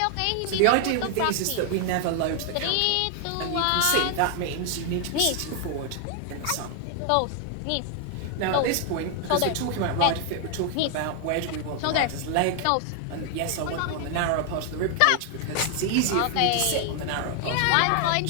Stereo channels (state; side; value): different; both; correlation 0.00